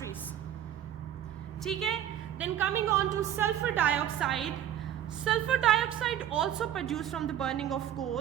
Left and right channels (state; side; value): quieter; left; 10.8 dB